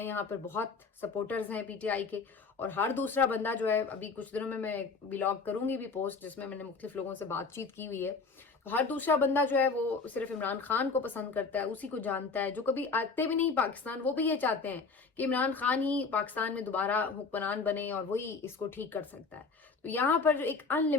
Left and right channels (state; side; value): quieter; right; 4.6 dB